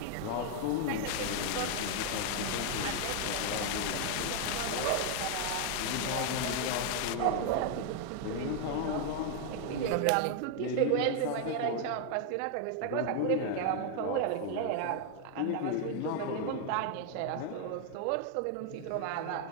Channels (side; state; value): both; different; correlation 0.00